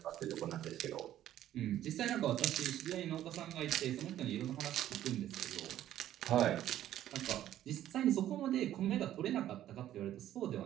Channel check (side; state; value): left; quieter; 12.3 dB